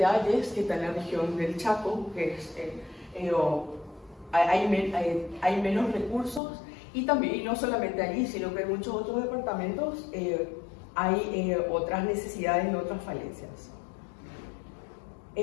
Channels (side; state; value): right; drops out; at 6.4 s